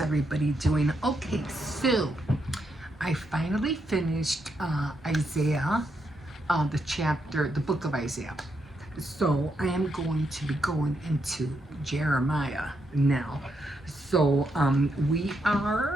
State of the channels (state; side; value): normal; both; correlation 0.80